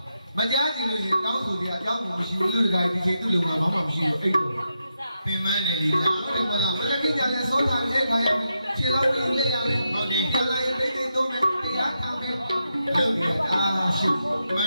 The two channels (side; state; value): both; inverted; correlation -0.85